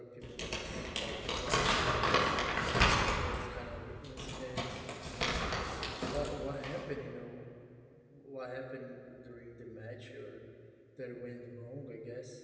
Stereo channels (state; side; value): identical; both; correlation 1.00